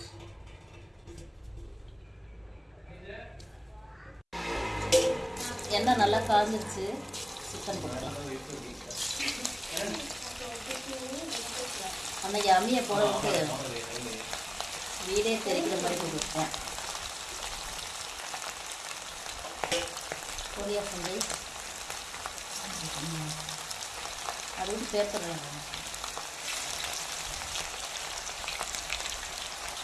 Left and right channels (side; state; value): both; identical; correlation 1.00